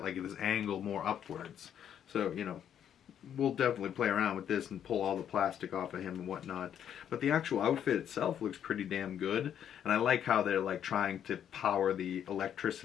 like this angle more upwards. So we'll definitely play around with this and pull all the plastic off of him and whatnot. But the actual outfit itself looks pretty damn good. And I like how they're like trying to power the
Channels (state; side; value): quieter; right; 9.4 dB